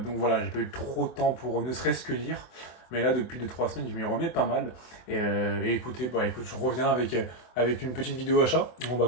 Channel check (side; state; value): right; late; 24 ms